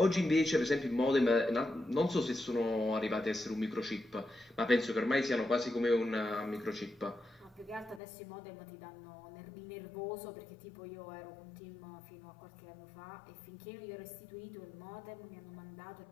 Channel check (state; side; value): drops out; right; at 8.0 s